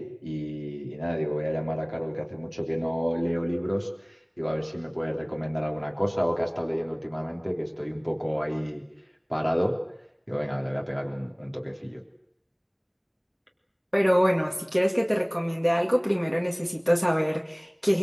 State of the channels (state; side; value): identical; both; correlation 1.00